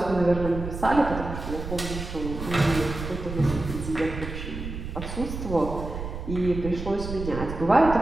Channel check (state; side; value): noise; right; rumble, 7 dB below the sound